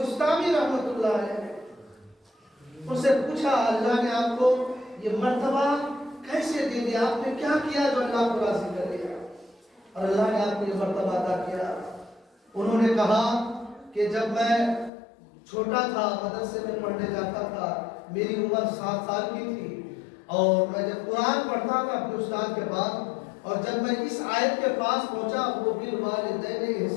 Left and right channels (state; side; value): drops out; right; at 14.9 s